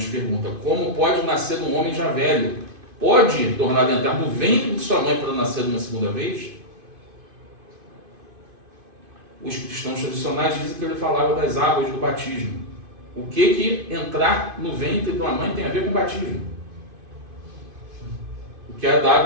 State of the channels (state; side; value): late; left; 2.5 ms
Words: pergunta: como pode nascer um homem já velho? Pode tornar a entrar no ventre de sua mãe para nascer uma segunda vez? Os cristãos tradicionais dizem que ele falava das águas do batismo. O que entrar no ventre de uma mãe tem a ver com batismo? O que é da